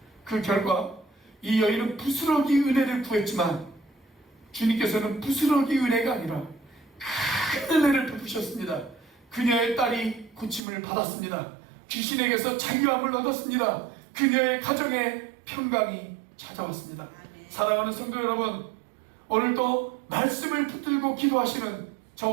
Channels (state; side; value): drops out; left; at 10.6 s